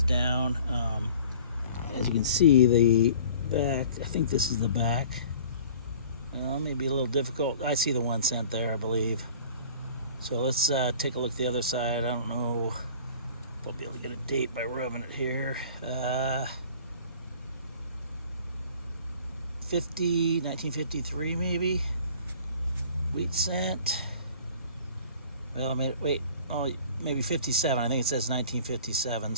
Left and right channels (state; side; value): inverted; both; correlation -0.47